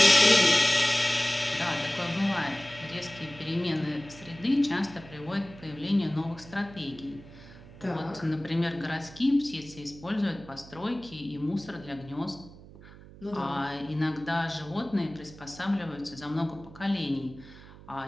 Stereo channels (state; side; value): noise; right; hum, 19 dB below the sound